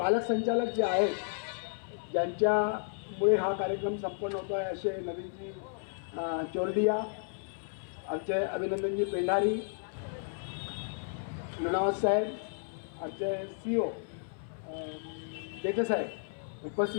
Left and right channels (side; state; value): right; silent; 56 dB below the other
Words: संचालक जे आहेत ज्यांच्यामुळे हा कार्यक्रम संपन्न होतो आहे असे नवीनजी चोरडिया, आमचे अभिनंदनजी पेंढारी, लुणावत साहेब, आमचे CEO देते साहेब,